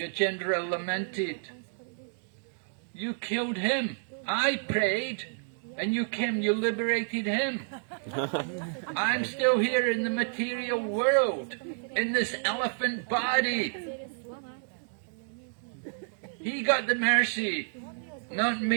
lamented, "You killed him. I prayed, and you came, you liberated him. I'm still here in the material world, in this elephant body. He got the mercy, not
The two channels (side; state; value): left; silent; digital silence